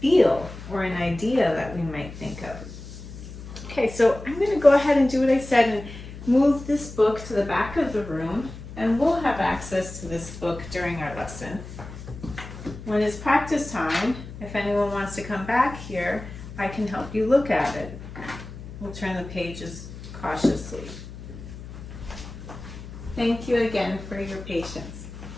feel or an idea that we might think of. Okay, so I'm going to go ahead and do what I said and move this book to the back of the room, and we'll have access to this book during our lesson. When it's practice time, if anyone wants to come back here, I can help you look at it. We'll turn the pages cautiously. Thank you again for your patience.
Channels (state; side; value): noise; left; hum, 13 dB below the sound